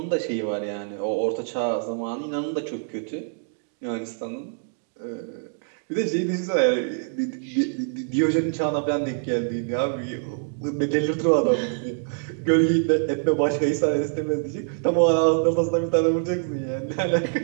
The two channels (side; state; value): left; silent; digital silence